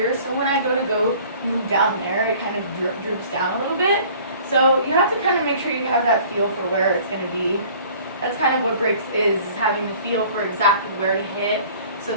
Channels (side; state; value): both; inverted; correlation -0.50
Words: So when I go move down there, it kind of droops down a little bit. So you have to kind of make sure you have that feel for where it's going to be. That's kind of what breaks is having the feel for exactly where to hit so